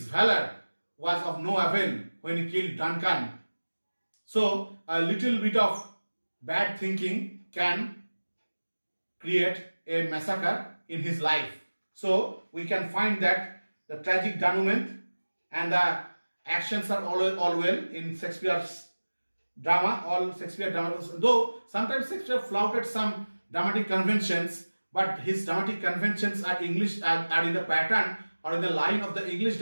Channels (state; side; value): inverted; both; correlation -1.00